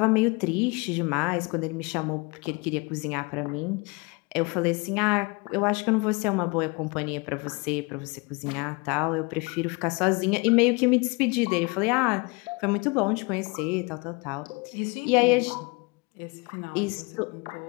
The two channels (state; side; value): quieter; right; 28.0 dB